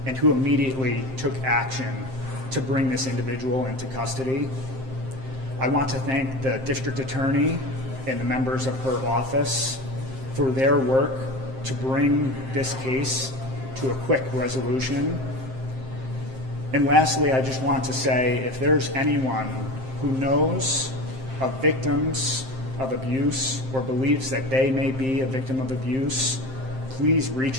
and who immediately took action to bring this individual into custody. I want to thank the district attorney and the members of her office for their work to bring this case to a quick resolution. And lastly, I just want to say, if there's anyone who knows of victims of abuse or believes that they may be a victim of abuse, please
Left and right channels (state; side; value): late; left; 7.6 ms